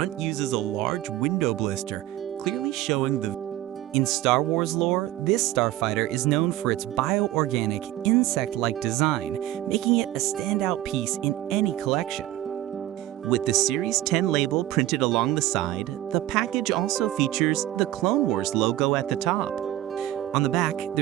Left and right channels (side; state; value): left; quieter; 14.8 dB